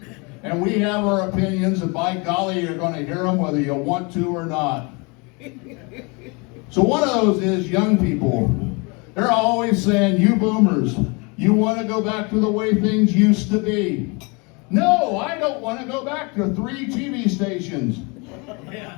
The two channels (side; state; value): right; quieter; 29.9 dB